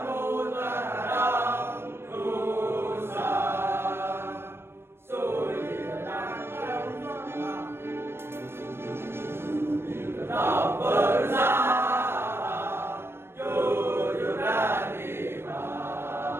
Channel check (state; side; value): late; left; 0.12 ms